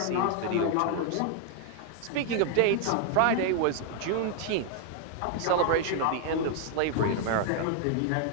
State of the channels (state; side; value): different; both; correlation 0.00